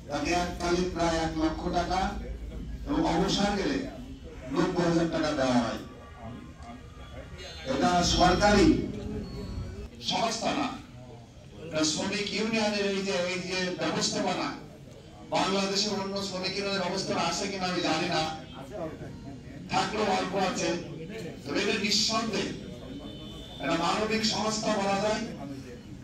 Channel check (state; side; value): identical; both; correlation 1.00